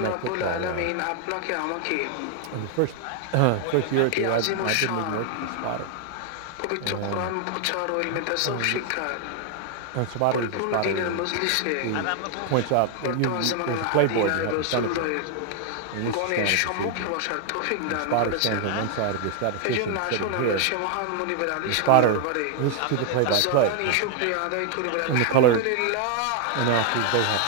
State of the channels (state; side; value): different; both; correlation 0.00